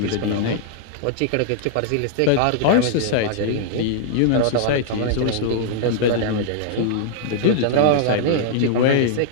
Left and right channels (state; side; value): different; both; correlation -0.01